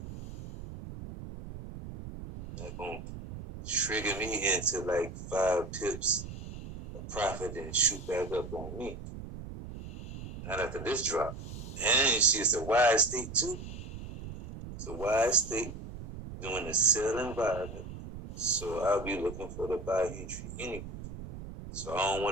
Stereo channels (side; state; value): right; noise; rumble, 10 dB below the sound